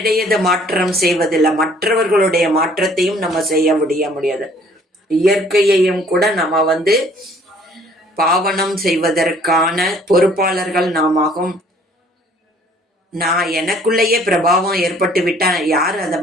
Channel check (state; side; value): normal; both; correlation 0.58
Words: மாற்றம் செய்வதில்லை, மற்றவர்களுடைய மாற்றத்தையும் நம்ம செய்ய முடியாது. இயற்கையையும் கூட நம்ம பாவனம் செய்வதற்கான பொறுப்பாளர்கள் நாமாகும். நான் எனக்குள்ளேயே பிரபாவம் ஏற்பட்டு விட்டா யார் அதை